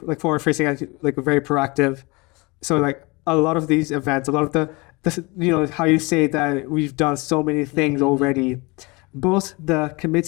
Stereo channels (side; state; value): right; quieter; 26.0 dB